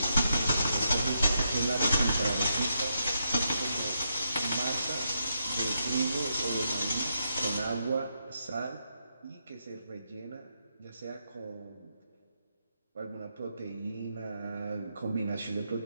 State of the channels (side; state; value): both; inverted; correlation -0.81